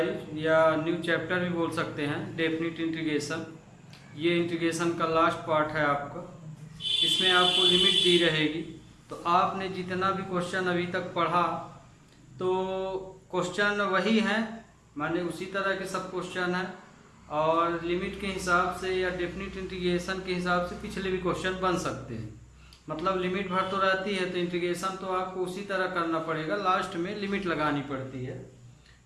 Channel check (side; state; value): both; identical; correlation 1.00